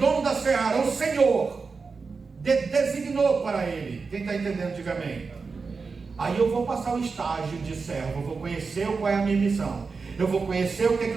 da seara, o Senhor designou para ele. Quem está entendendo, diga amém. Aí eu vou passar o estágio de servo, eu vou conhecer qual é a minha missão, eu vou conhecer o que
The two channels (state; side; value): quieter; left; 4.7 dB